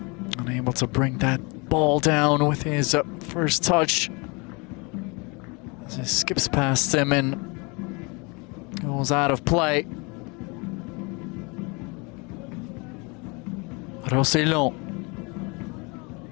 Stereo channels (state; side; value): quieter; right; 29.2 dB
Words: Unable to bring that ball down with his first touch. As he skips past him and goes out of play. Rossellon.